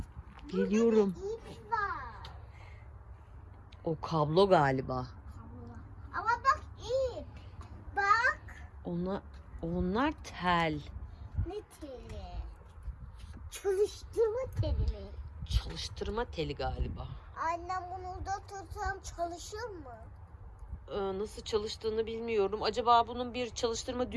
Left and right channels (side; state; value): both; identical; correlation 1.00